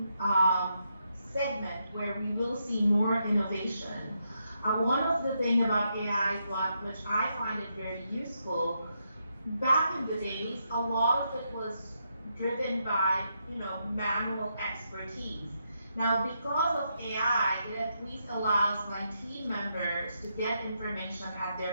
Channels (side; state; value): both; inverted; correlation -0.80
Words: segment where we will see more innovation. One of the things about AI, which I find it very useful, back in the days, a lot of it was driven by, manual expertise. Now, because of AI, it at least allows my team members to get information at